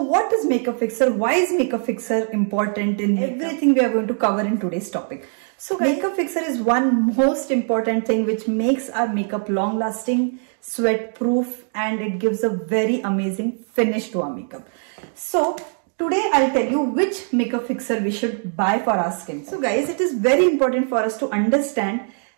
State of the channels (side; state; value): left; silent; 56 dB below the other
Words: what is makeup fixer? Why is makeup fixer important in everything we are going to cover in today's topic? So makeup fixer is one most important thing which makes our makeup long lasting, sweat proof, and it gives a very amazing finish to our makeup. So today I'll tell you which makeup fixer we should buy for our skin. So guys, it is very important for us to understand